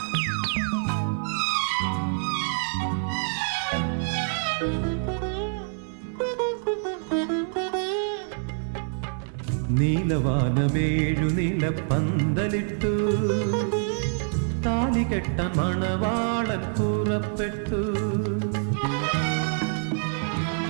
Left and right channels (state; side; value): silent; left; 58 dB below the other